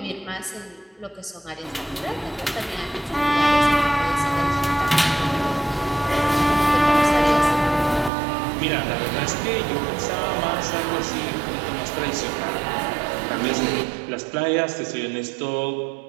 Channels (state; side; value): drops out; left; at 8.1 s